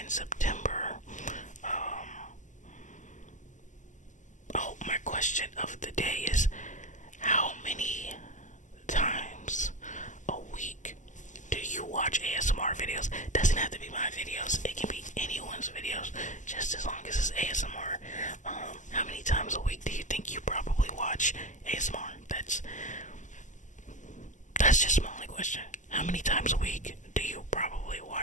September? Oh, my question of the day is, how many times a week do you watch ASMR videos? Doesn't have to be my videos. It can be anyone's videos, just as long as it's ASMR. How many times a week do you think you probably watch ASMR? That's just my only question. How many times a week do you probably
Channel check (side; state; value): right; late; 0.36 ms